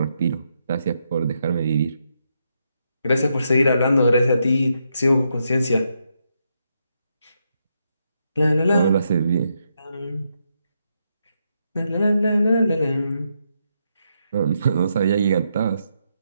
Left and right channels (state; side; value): inverted; both; correlation -0.80